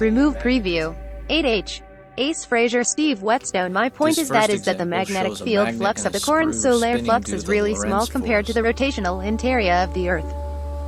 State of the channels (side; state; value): both; identical; correlation 1.00